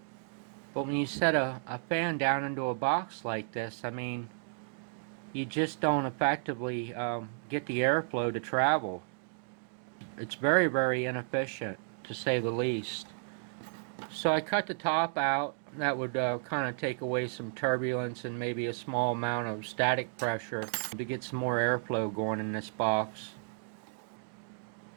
But when you set a fan down into a box like this, I mean, you just don't effectively get the airflow to travel. It's very, very inefficient, to say the least. So I cut the top out. That would kind of take away some turbulence and maybe a small amount of static pressure to get some more airflow going in this box.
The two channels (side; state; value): left; silent; digital silence